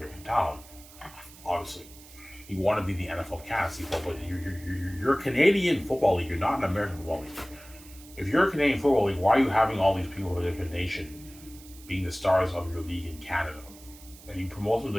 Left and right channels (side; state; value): right; noise; hiss, 20 dB below the sound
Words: talent, obviously. You want to be the NFL of Canada, but you're a Canadian football league. You're not an American football league. If you're a Canadian football league, why are you having all these people from a different nation being the stars of your league in Canada? And you promote them to